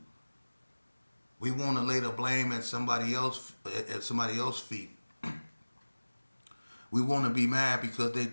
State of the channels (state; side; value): inverted; both; correlation -1.00